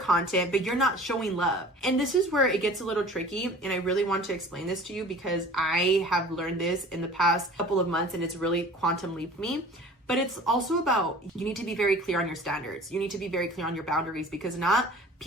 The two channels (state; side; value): normal; both; correlation 0.44